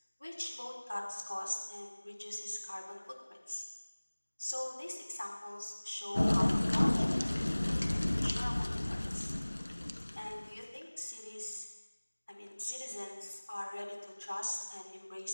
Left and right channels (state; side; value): inverted; both; correlation -1.00